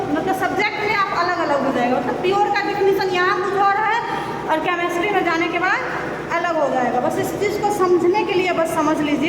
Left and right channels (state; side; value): identical; both; correlation 1.00